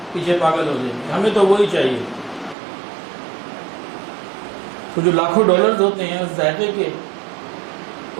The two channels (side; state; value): left; drops out; at 2.6 s